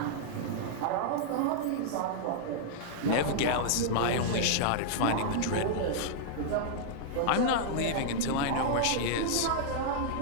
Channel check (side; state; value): both; different; correlation -0.01